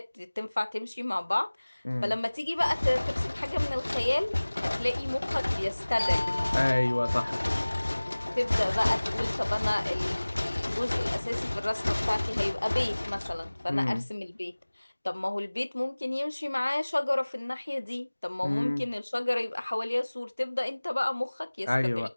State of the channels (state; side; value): inverted; both; correlation -1.00